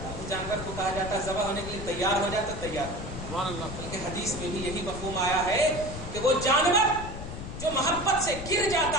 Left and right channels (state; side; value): noise; left; rumble, 9 dB below the sound